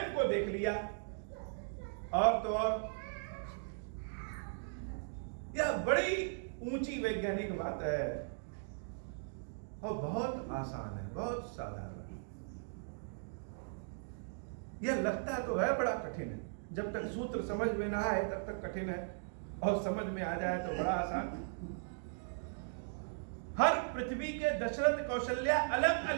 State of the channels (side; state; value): left; silent; digital silence